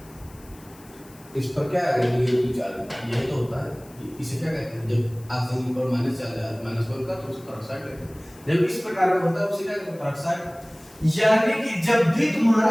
इस पर क्या है, नेगेटिव चार्ज, यही तो होता है। इसे क्या कहते हैं, जब ऑक्सीजन पर माइनस चार्ज है, माइनस वन का, तो उसे पेरोक्साइड कहते हैं। जब इस प्रकार का होता है उसे क्या कहते हैं, पेरोक्साइड। यानी कि जब भी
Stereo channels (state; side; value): noise; left; hiss, 24 dB below the sound